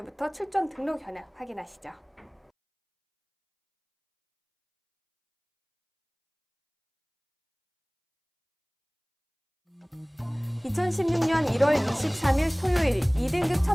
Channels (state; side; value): identical; both; correlation 1.00